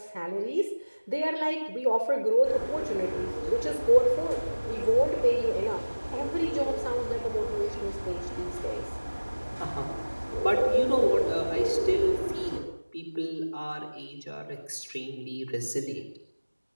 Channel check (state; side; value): inverted; both; correlation -1.00